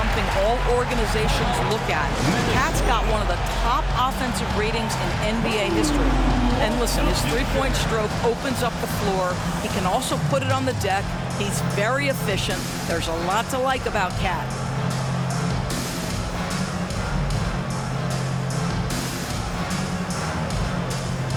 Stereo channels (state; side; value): identical; both; correlation 1.00